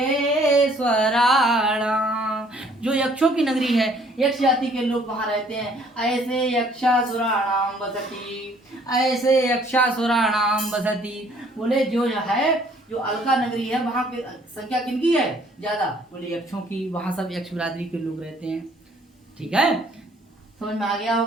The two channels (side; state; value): both; normal; correlation 0.60